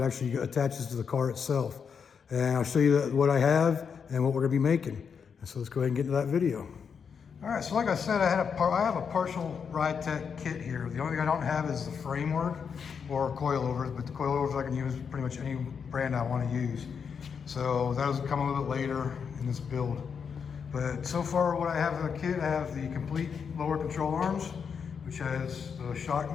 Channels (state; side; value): quieter; right; 6.5 dB